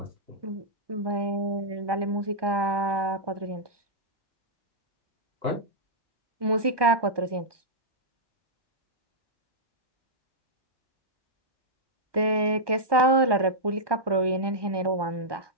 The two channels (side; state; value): left; late; 1.2 ms